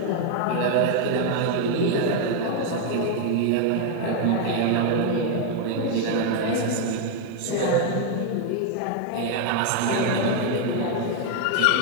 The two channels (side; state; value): both; different; correlation 0.00